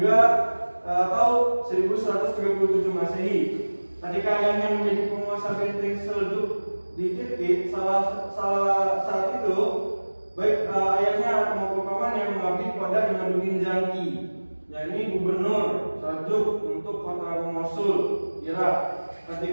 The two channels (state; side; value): inverted; both; correlation -1.00